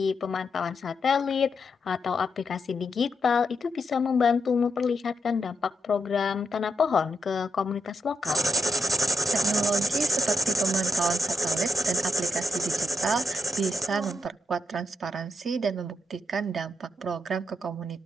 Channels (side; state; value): both; normal; correlation 0.83